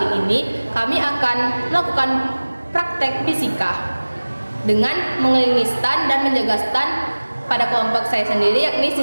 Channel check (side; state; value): both; inverted; correlation -1.00